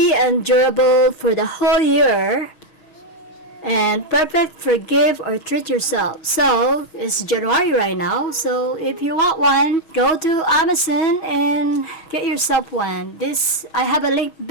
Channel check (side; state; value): right; late; 6.3 ms